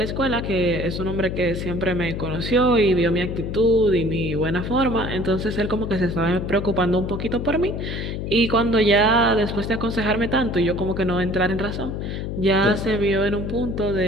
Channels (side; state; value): left; noise; hum, 4 dB below the sound